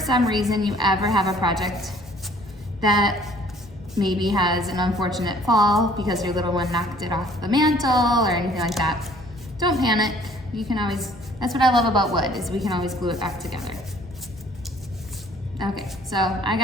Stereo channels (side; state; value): both; normal; correlation 0.56